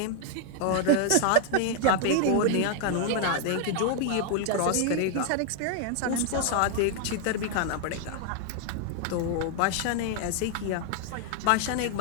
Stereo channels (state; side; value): different; both; correlation 0.00